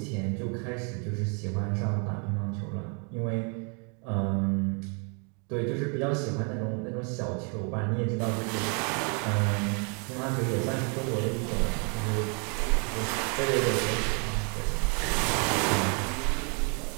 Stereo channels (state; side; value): quieter; left; 36.7 dB